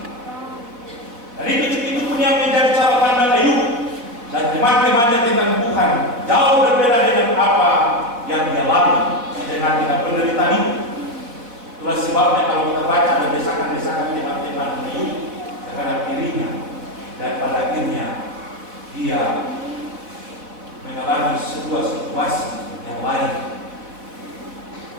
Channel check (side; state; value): left; late; 4.2 ms